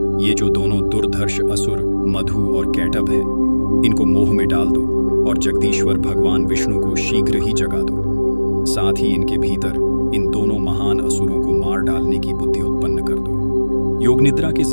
ये जो दोनों दुर्धर्ष असुर मधु और कैटभ हैं, इनको मोह में डाल दो और जगदीश्वर भगवान विष्णु को शीघ्र ही जगा दो। साथ ही इनके भीतर इन दोनों महान असुरों को मार डालने की बुद्धि उत्पन्न कर दो। योग निद्रा के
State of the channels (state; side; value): inverted; both; correlation -1.00